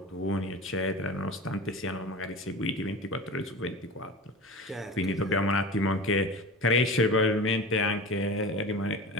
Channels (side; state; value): both; normal; correlation 0.32